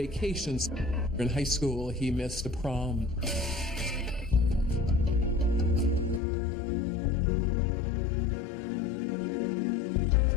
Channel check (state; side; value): drops out; right; at 6.2 s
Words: In high school, he missed a prom.